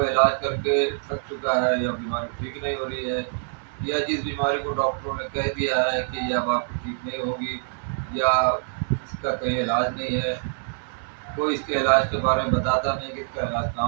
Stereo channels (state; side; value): silent; left; 62 dB below the other